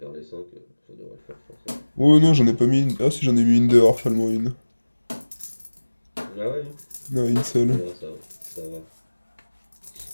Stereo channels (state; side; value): inverted; both; correlation -1.00